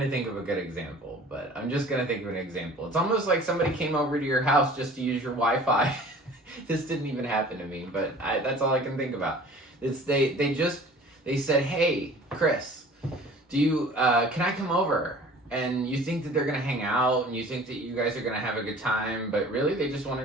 to think of a good example, but I'm just going to think of an example. It's almost like somebody came over to your house just to use your Wi-Fi. This didn't even happen to me, but that's all I can think about. They said, hey, Chris, can I come over? And you think that they're going to hang out and you think that you guys are going to have a good time, but really they just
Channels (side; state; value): both; normal; correlation 0.46